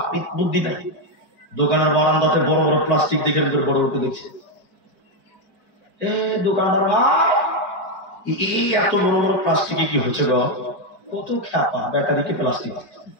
বুদ্ধি নাই। দোকানের বারান্দাতে বড় বড় প্লাস্টিক দেখে বড় বড় দেখছে, দোকানদার এই এত বড় বড় প্লাস্টিকে কি হচ্ছে গো? কত খেপা, ব্যাটারিকে প্লাস্টিক,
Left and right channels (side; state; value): right; late; 5.0 ms